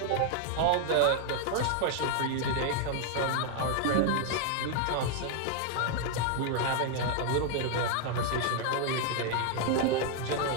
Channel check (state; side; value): different; both; correlation 0.00